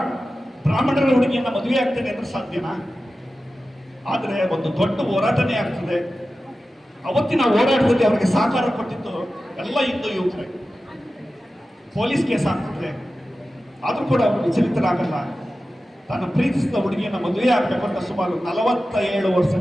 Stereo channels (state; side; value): normal; both; correlation 0.94